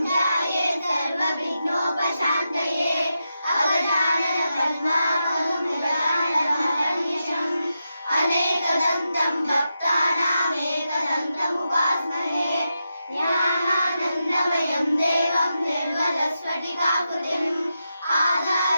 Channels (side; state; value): both; inverted; correlation -0.88